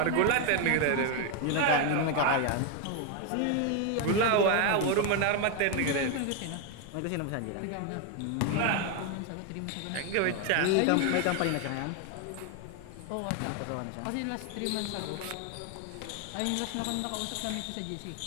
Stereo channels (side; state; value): both; different; correlation 0.01